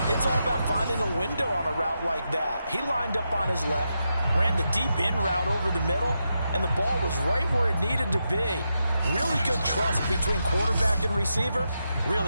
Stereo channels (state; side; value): inverted; both; correlation -0.86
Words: it's all about finding a window on a route like that. He lined up on his left, ran the deep in route over the middle, and the ball was right where it needed to be. Really good trust between quarterback and receiver.